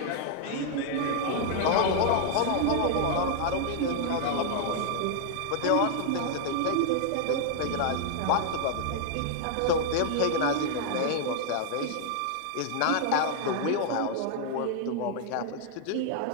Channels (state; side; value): different; both; correlation 0.00